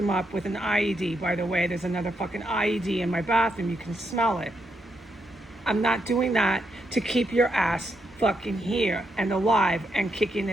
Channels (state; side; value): normal; both; correlation 0.80